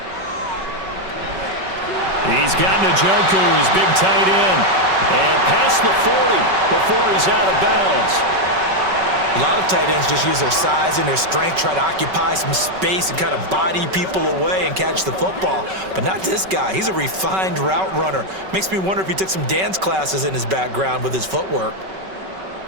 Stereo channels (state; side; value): late; left; 5.3 ms